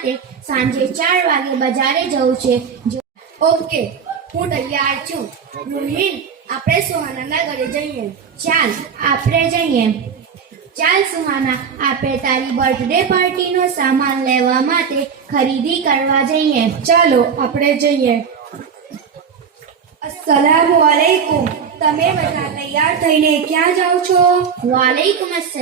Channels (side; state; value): left; quieter; 6.7 dB